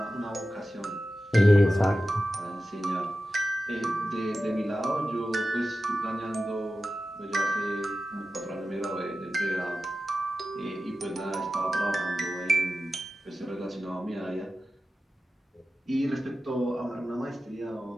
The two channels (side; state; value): both; normal; correlation 0.93